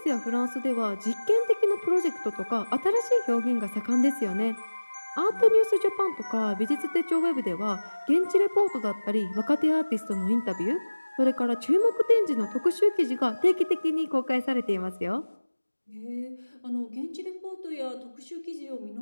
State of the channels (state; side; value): inverted; both; correlation -1.00